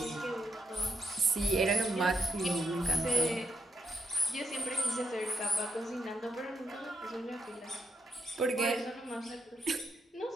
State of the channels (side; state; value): both; normal; correlation 0.80